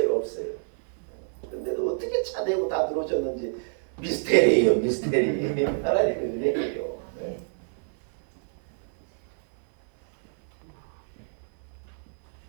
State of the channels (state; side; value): silent; left; 57 dB below the other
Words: 근데도 어떻게 차대고 다 들어오셨는지 미스테리예요, 미스테리. 하나님의 은혜예요. 네.